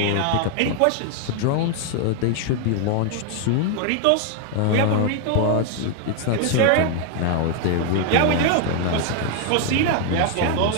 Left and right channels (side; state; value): both; different; correlation 0.01